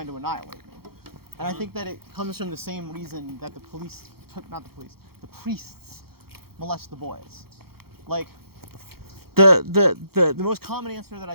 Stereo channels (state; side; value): late; left; 0.95 ms